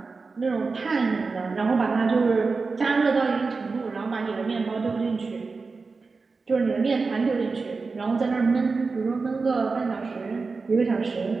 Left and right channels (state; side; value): quieter; left; 4.3 dB